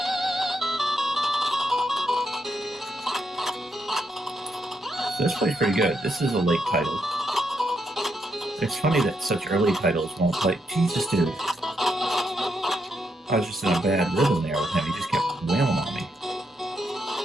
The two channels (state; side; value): normal; both; correlation 0.79